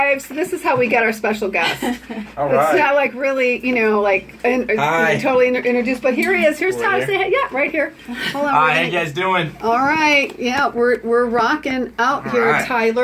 So this is how we get our special guest. All right. It's not like really, totally introduced. But here he is. Here's Tyler. Say hey. Yeah, right here. Hold on. Hi, how you guys doing? All right. Yeah, we're rocking out here, right.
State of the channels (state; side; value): identical; both; correlation 1.00